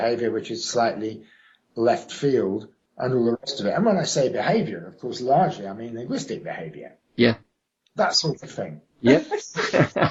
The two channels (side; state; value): both; identical; correlation 1.00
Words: which is slightly left field, and all the rest of it. And when I say behavior, of course, largely I mean linguistic behavior. Yeah. That sort of thing. Yeah.